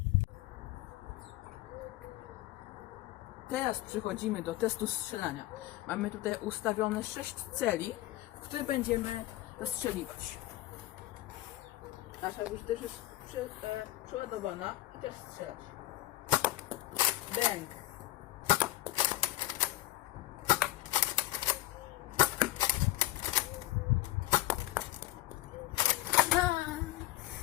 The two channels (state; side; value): quieter; right; 16.1 dB